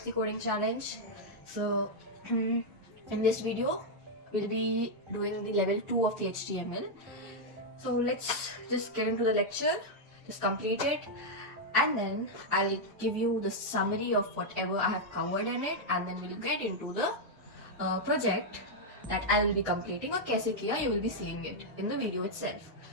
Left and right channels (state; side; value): normal; both; correlation -0.02